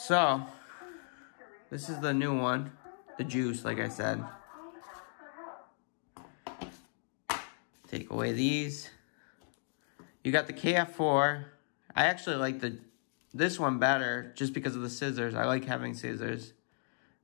this is the new one. The juice, like I said. Take away these. You got the KF4. I actually like this one better just because of the scissors. I like having scissors.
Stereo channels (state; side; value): silent; right; 54 dB below the other